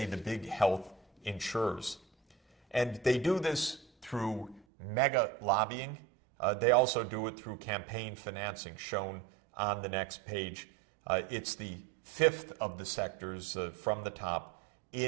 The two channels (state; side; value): drops out; left; at 4.7 s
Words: the big health insurers. And they do this through mega lobbying. They also do it through campaign financing, shown on the next page. It's the fifth of the sectors from the top